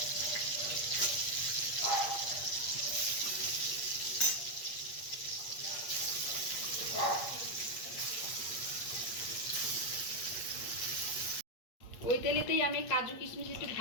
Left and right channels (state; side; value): late; right; 8.6 ms